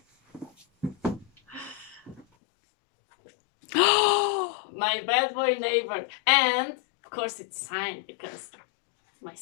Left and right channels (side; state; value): right; drops out; at 2.2 s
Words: My bad boy neighbor. And, of course, it's signed because my